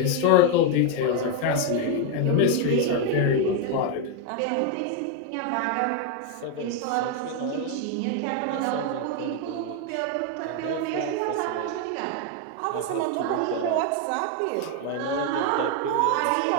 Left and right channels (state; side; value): different; both; correlation 0.01